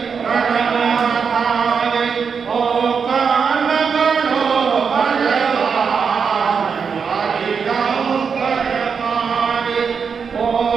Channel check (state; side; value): quieter; left; 6.0 dB